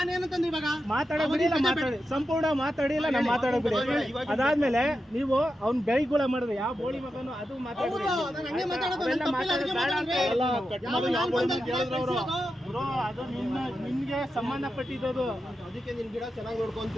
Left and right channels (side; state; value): both; normal; correlation 0.89